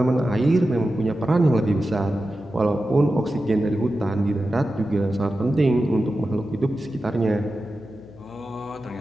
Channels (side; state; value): left; noise; hum, 21 dB below the sound